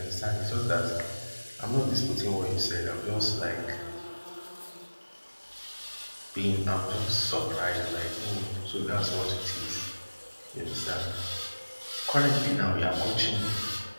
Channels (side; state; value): both; inverted; correlation -1.00